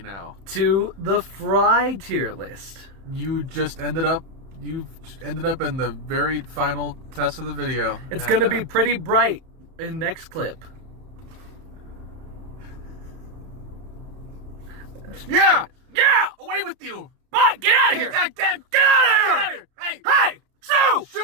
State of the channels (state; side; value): late; left; 31 ms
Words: now to the Fry tier list. You've ended up in the very final test of the video. It's going to be pretty bright in next clip. Yeah! Away with you! But get out of here! Get out of here! Hey! Hey! Sue!